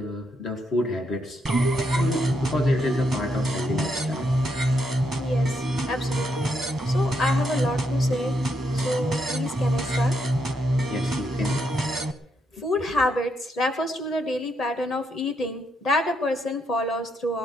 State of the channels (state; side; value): normal; both; correlation 0.78